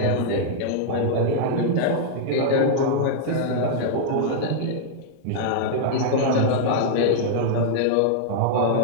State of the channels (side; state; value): both; different; correlation -0.01